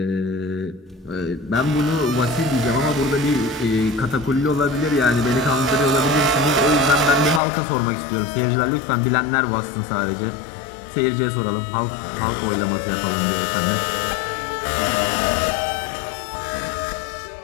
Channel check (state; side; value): drops out; right; at 7.4 s